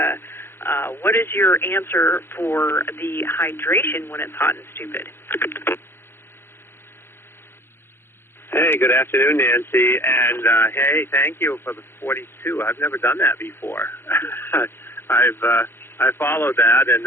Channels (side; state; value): right; late; 0.11 ms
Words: what is your answer for the hydration when it's hot and stupid? Hey, good afternoon, Nancy. And, hey, thank you for the 42. I've never done that before. I followed that and